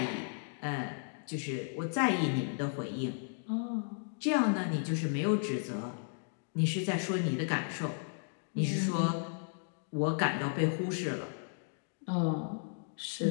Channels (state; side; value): silent; right; digital silence